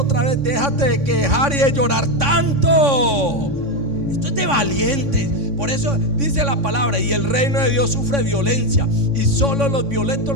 vez: déjate de quejar y de llorar tanto. Esto es de valientes. Por eso dice la palabra: y el reino de Dios sufre violencia, y solo los violentos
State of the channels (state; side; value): late; left; 3.6 ms